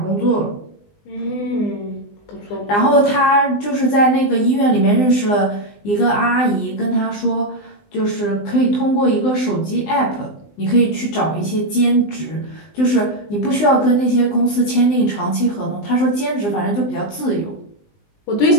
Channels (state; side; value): late; right; 19 ms